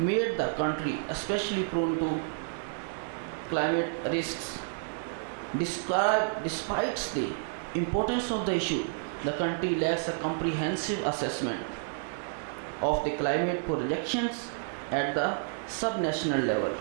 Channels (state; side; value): silent; left; digital silence